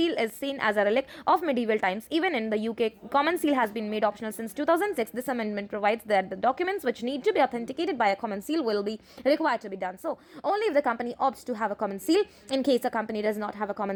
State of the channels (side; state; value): both; identical; correlation 1.00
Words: is seen as a relic of medieval times. Even in the UK, common seal has been made optional since 2006. This this amendment provides that the documents which need to be authenticated by a common seal will be required to be done. So only if the company opts to have a common seal. In case a company does not have a